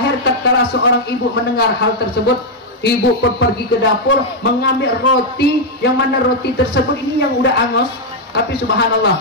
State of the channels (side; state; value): both; normal; correlation -0.01